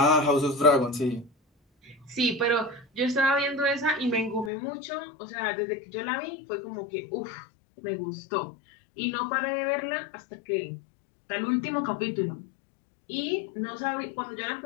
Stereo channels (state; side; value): drops out; right; at 4.5 s